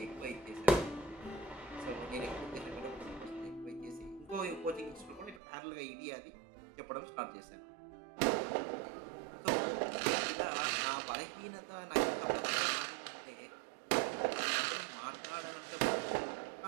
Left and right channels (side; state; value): left; drops out; at 5.4 s